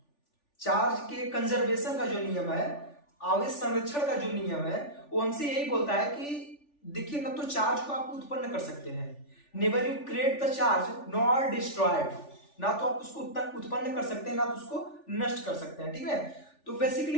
चार्ज के कंजर्वेशन का जो नियम है, आवेश संरक्षण का जो नियम है, वो हमसे यही बोलता है कि देखिए, ना तो चार्ज को आप उत्पन्न कर सकते हैं, never you create the charge nor destroyed, ना तो आप उसको उत्पन्न कर सकते हैं, ना तो उसको नष्ट कर सकते हैं। ठीक है, तो बेसिकली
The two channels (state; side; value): late; right; 3.4 ms